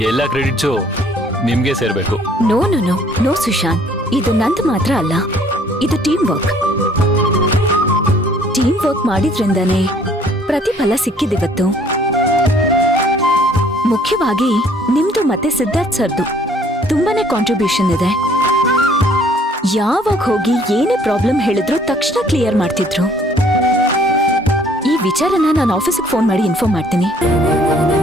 ಎಲ್ಲ ಕ್ರೆಡಿಟ್ಸು ನಿಮ್ಗೆ ಸೇರ್ಬೇಕು. No no no no Sushant, ಇದು ನಂದು ಮಾತ್ರ ಅಲ್ಲ, ಇದು ಟೀಮ್ ವರ್ಕ್ ಮಾಡಿದ್ರಿಂದಾನೇ ಪ್ರತಿಫಲ ಸಿಕ್ಕಿದಿವತ್ತು. ಮುಖ್ಯವಾಗಿ ನಿಮ್ದು ಮತ್ತೆ ಸಿದ್ಧಾರ್ಥ್ ಸರ್ದು ತುಂಬಾನೇ ಕಾಂಟ್ರಿಬ್ಯೂಷನ್ ಇದೆ. ಯಾವಾಗ ಹೋಗಿ ಏನೇ ಪ್ರಾಬ್ಲಮ್ ಹೇಳಿದ್ರು ತಕ್ಷಣ ಕ್ಲಿಯರ್ ಮಾಡ್ತಿದ್ರು. ಈ ವಿಚಾರನ ನಾನು ಆಫೀಸಿಗೆ ಫೋನ್ ಮಾಡಿ ಇನ್ಫಾರ್ಮ್ ಮಾಡ್ತೀನಿ.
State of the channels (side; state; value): both; normal; correlation 0.59